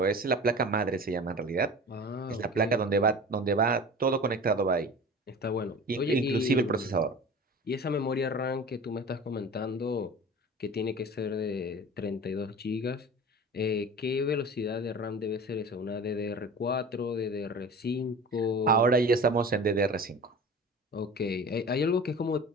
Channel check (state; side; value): normal; both; correlation 0.38